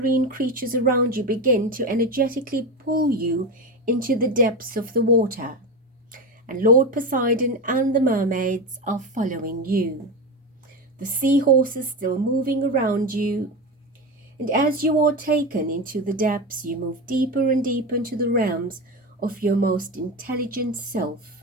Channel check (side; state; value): both; normal; correlation 0.19